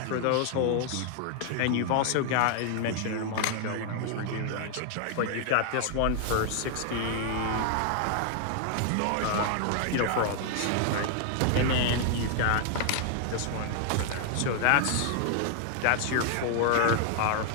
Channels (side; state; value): both; different; correlation 0.00